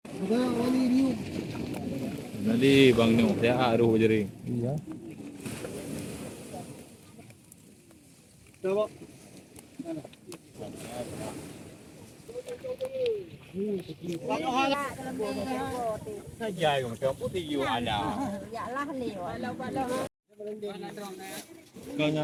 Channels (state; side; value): identical; both; correlation 1.00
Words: Nanti bang no, saya aruh jadi. Iya. Coba. Dài còn cho bút đi vô ada. Dạ là liều